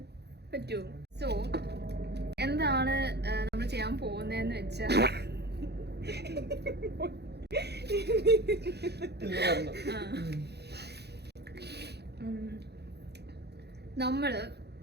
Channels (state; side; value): late; left; 0.48 ms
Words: പറ്റുമോ? സോ എന്താണ് നമ്മൾ ചെയ്യാൻ പോകുന്നതെന്ന് വെച്ചാ, നമ്മള്